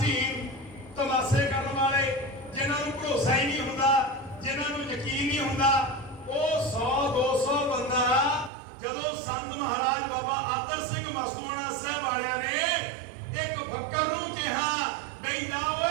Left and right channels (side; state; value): left; drops out; at 8.5 s